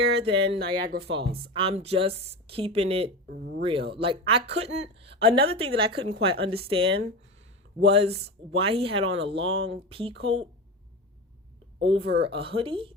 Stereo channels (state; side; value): normal; both; correlation 0.24